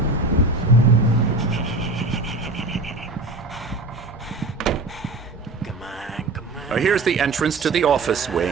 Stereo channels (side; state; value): left; quieter; 3.2 dB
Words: Here's the entrance to the office